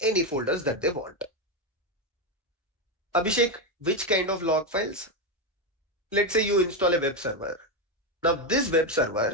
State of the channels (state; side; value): normal; both; correlation 0.09